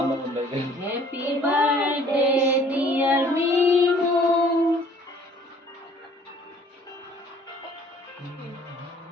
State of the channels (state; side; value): normal; both; correlation 0.55